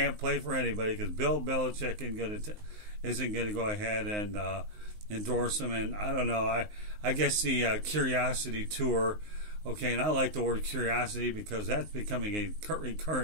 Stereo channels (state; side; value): late; left; 19 ms